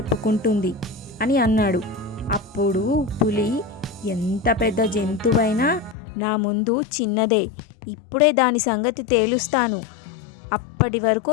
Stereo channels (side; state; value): right; drops out; at 6.0 s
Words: అని అన్నాడు. అప్పుడు పులి, ఎంత పెద్ద జంతువైనా నా ముందు చిన్నదే, ఇప్పుడే దాని సంగతి తేలుస్తాను, అప్పటి వరకు